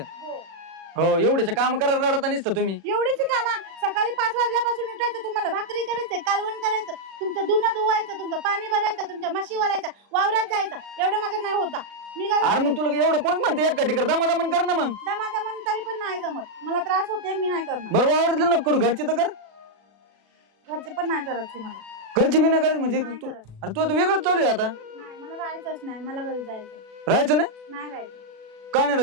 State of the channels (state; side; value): late; left; 36 ms